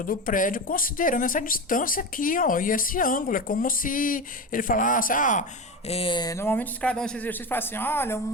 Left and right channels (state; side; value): normal; both; correlation 0.22